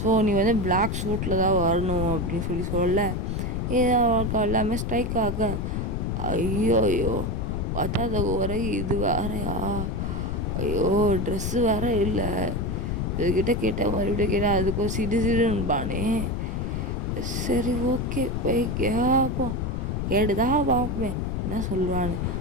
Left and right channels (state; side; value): noise; left; rumble, 1 dB below the sound